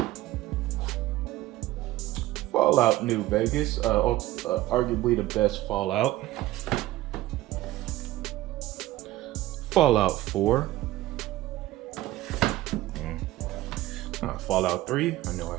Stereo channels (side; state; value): left; quieter; 16.0 dB